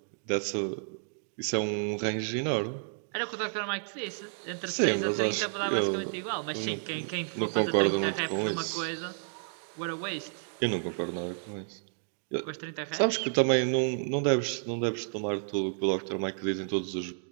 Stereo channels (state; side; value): silent; left; 57 dB below the other